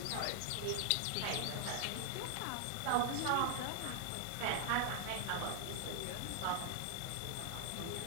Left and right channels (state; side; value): different; both; correlation 0.00